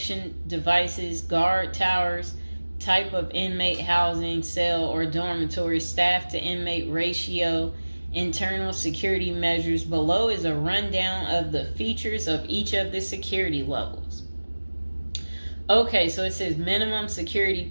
devices, guard towers, type of inmate housing, cell or dormitory, staff to inmate ratio, internal security measures. Below is a rundown of the features of each of the security levels. Okay, so it says minimum security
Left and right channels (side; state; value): both; inverted; correlation -1.00